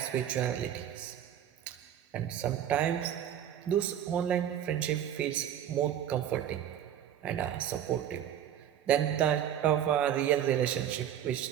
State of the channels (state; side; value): quieter; left; 10.2 dB